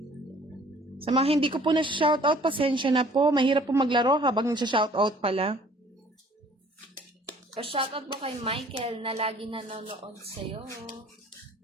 Sa mga hindi ko po na-shoutout, pasensya na po. Mahirap po maglaro habang nasa-shoutout pala. Pa-shoutout po kay Michael na lagi nanonood sa'yo.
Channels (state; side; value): normal; both; correlation 0.54